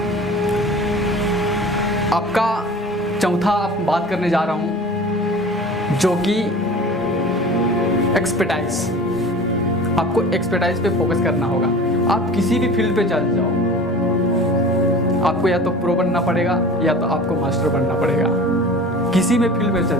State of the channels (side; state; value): both; normal; correlation 0.40